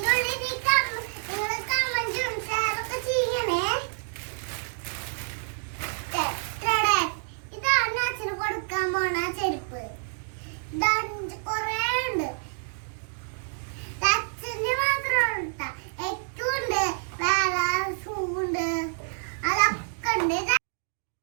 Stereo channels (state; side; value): silent; left; digital silence